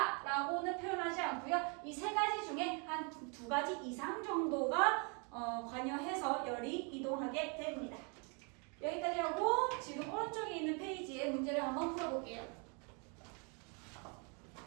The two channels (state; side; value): quieter; left; 35.4 dB